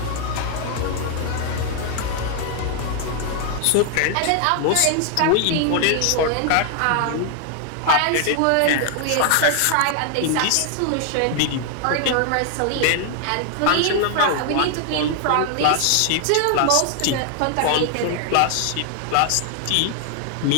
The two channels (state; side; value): different; both; correlation 0.00